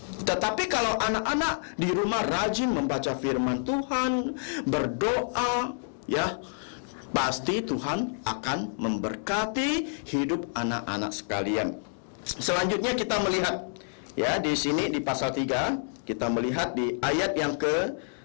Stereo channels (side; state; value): right; silent; digital silence